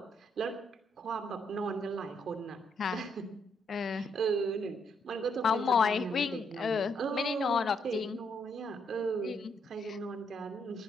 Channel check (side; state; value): both; normal; correlation 0.75